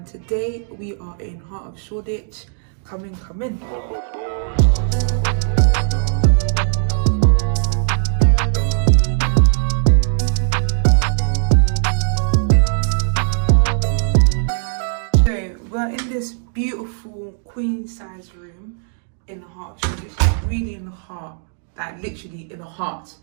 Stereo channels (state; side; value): silent; left; digital silence